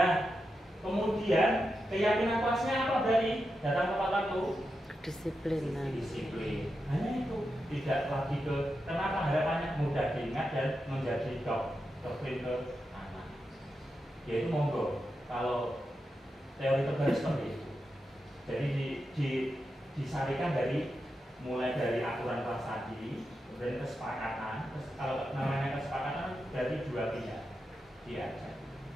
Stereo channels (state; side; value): normal; both; correlation 0.88